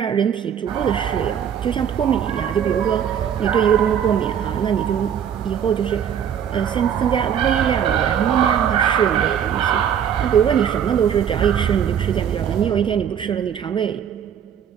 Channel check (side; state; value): left; quieter; 8.6 dB